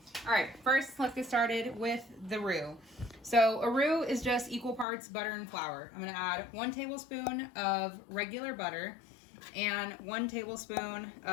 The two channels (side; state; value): right; drops out; at 4.9 s